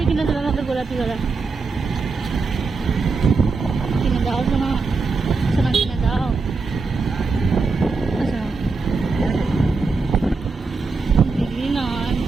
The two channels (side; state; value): left; quieter; 4.3 dB